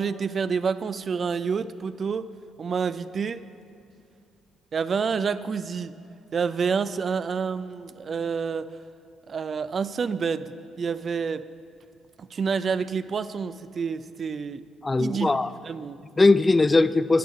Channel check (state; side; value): normal; both; correlation 0.87